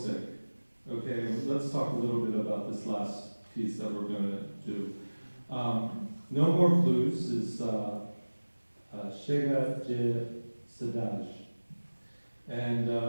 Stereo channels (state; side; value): inverted; both; correlation -1.00